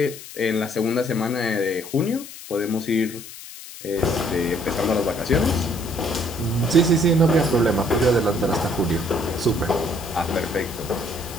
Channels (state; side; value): noise; left; hiss, 14 dB below the sound